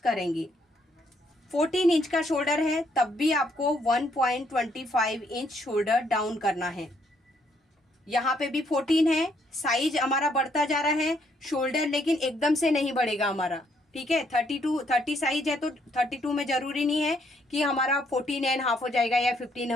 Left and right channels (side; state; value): both; normal; correlation 0.70